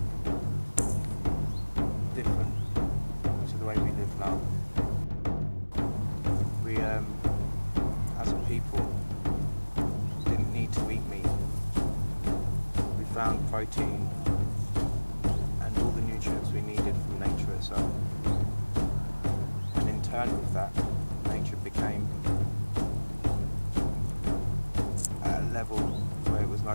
different to the way we live now. We, as a people, didn't need to eat meat. We found protein and all the nutrients we needed from nature itself. And in turn with that, nature became at a level where it was no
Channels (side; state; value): both; inverted; correlation -1.00